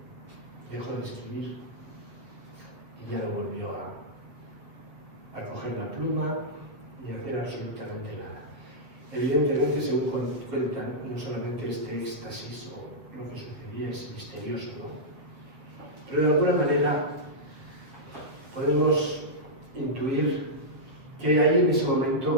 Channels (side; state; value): left; late; 7.4 ms